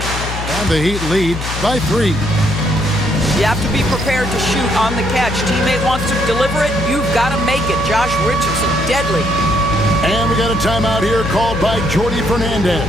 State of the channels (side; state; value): left; noise; hum, 6 dB below the sound